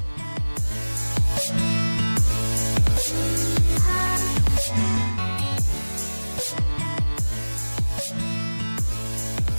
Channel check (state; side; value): inverted; both; correlation -1.00